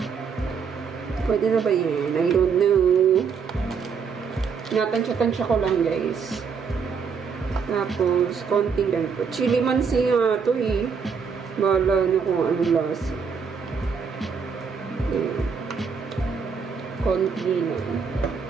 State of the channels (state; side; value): quieter; left; 6.0 dB